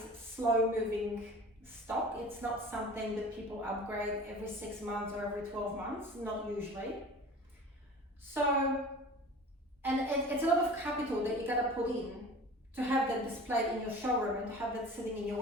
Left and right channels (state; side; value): normal; both; correlation 0.40